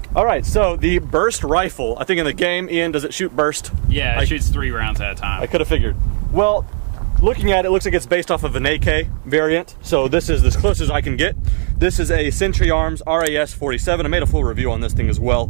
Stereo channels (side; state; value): left; silent; 58 dB below the other